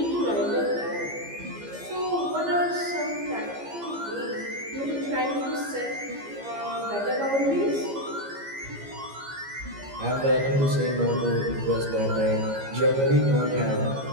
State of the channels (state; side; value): late; left; 15 ms